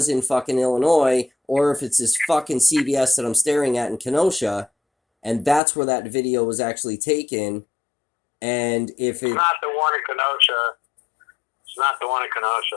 in fucking Illinois, or if it's this fucking CVS that I'm staring at in Kenosha, and that's where that video was actually taken. And if it's not the one in Kenosha. It's not the one in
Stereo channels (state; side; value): drops out; right; at 5.6 s